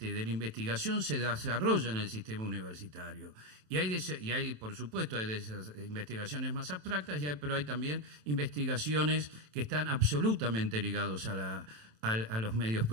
la investigación se desarrolla en el sistema universitario. Y hay, por supuesto, hay de esas investigaciones más abstractas, pero hay también investigaciones que están absolutamente ligados a los medios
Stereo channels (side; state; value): left; late; 27 ms